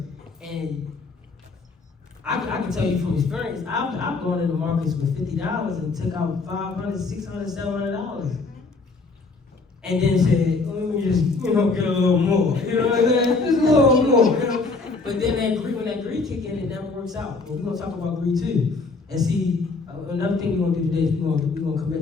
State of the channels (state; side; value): quieter; right; 3.9 dB